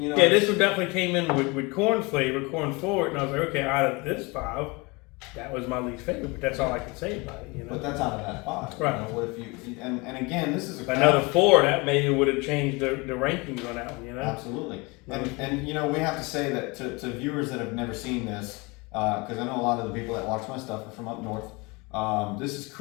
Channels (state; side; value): quieter; right; 26.5 dB